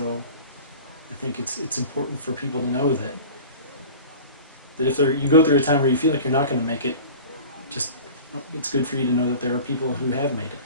I think it's important for people to know that if you go through a time where you feel like you're not going to make it, it's good for you to know that there are people who have made it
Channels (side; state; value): both; inverted; correlation -0.38